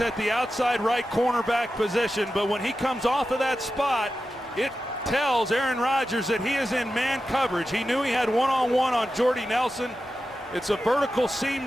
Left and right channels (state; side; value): normal; both; correlation 0.92